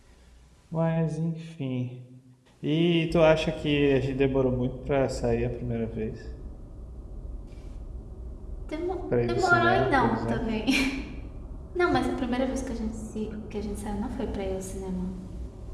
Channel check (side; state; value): both; identical; correlation 1.00